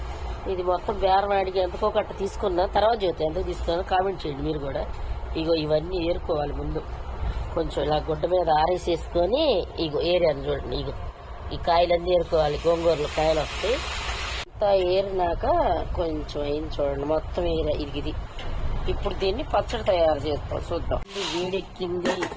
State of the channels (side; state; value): both; identical; correlation 1.00